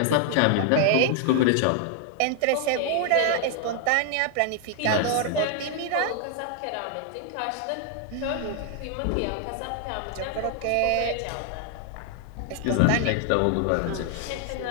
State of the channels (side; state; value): both; different; correlation 0.00